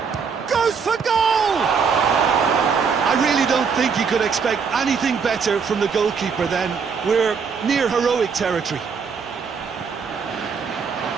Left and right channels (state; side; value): quieter; left; 5.9 dB